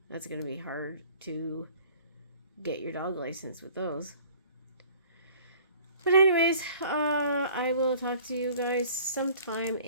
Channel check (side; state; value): both; inverted; correlation -0.50